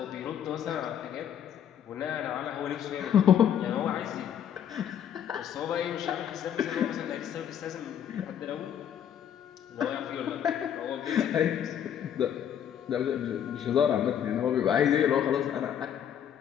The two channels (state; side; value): quieter; right; 9.4 dB